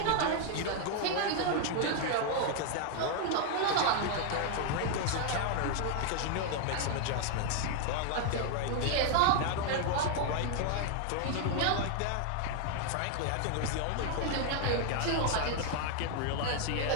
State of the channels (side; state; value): both; different; correlation 0.00